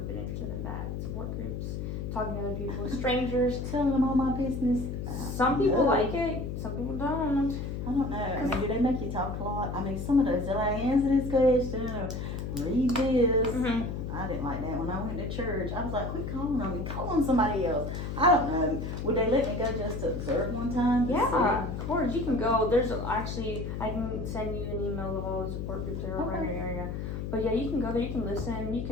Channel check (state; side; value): noise; left; hum, 4 dB below the sound